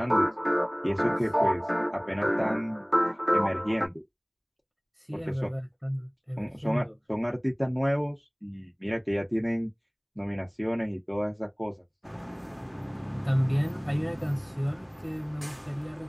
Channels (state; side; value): identical; both; correlation 1.00